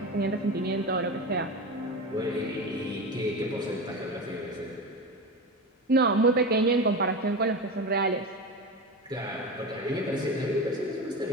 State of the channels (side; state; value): both; normal; correlation 0.24